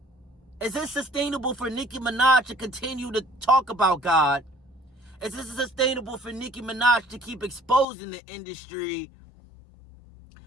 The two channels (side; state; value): right; drops out; at 7.9 s